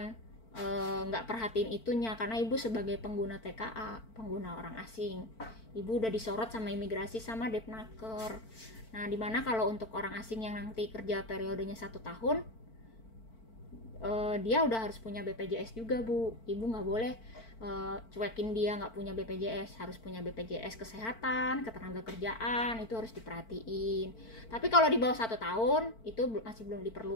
nggak perhatiin itunya, karena ibu sebagai pengguna TKA, pengguna orang asing, ibu udah disorot sama imigrasi sama Depnaker. Nah dimana kalau untuk orang asing yang nanti kerja periodenya 1 tahun, dia udah harus punya BPJS juga Bu. Ibu nggak boleh cuekin dia nggak punya BPJS, harus punya BPJS kesehatan, ketenaga kerjaan, itu harus diperhatiin. Tapi kalau di bawah 1 tahun itu masih belum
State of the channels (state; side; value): late; right; 4.5 ms